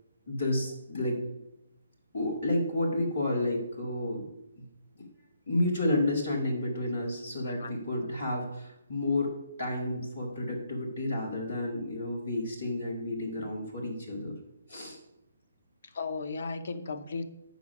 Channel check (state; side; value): inverted; both; correlation -0.74